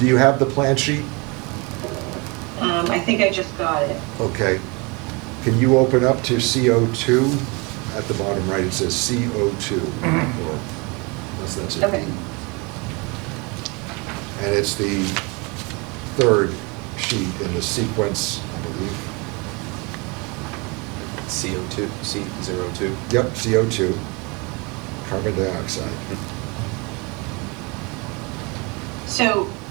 Do you have the plan sheet? I think I just got it. Okay. Can you open up to CO2? At the bottom right, it says CO2. Or, unless that's it. Okay. And it's the third sheet in the sequence, I believe. CO2, C02. Yep, CO2, carbon dioxide.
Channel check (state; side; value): quieter; left; 28.8 dB